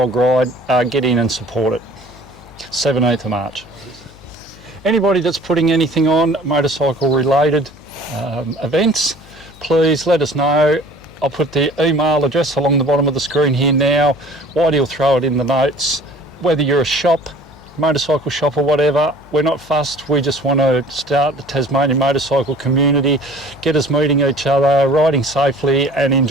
Ride, get in and support it. 17th of March. Anybody that's putting anything on motorcycle related events, please let us know. I'll put the email address along the bottom of the screen here now. Whitey will throw it in the notes. Whether you're a shop, motorcycle shop or whatever, we're not fussed. We just want to start the Tasmanian motorcycle community, get us meeting each other, riding safely and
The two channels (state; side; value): noise; left; hum, 24 dB below the sound